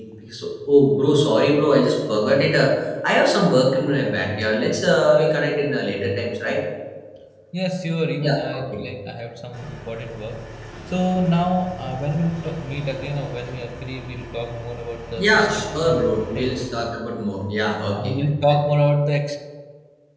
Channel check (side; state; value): both; identical; correlation 1.00